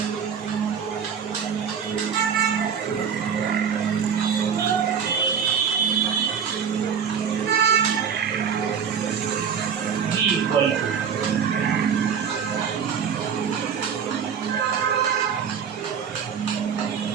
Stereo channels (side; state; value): left; quieter; 7.2 dB